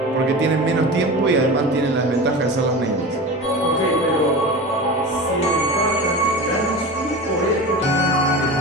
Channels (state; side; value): normal; both; correlation 0.30